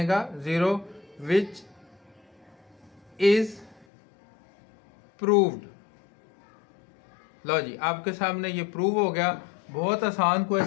0, विच इज प्रूव्ड। लो जी, आपके सामने ये प्रूव हो गया। बहुत आसान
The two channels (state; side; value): drops out; right; at 3.9 s